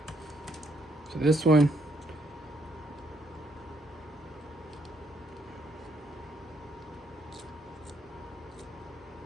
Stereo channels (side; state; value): both; normal; correlation 0.72